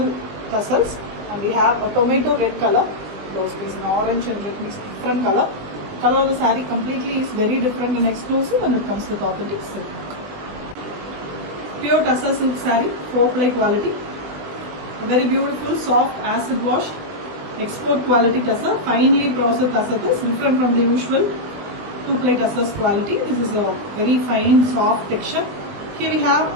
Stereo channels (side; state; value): left; late; 20 ms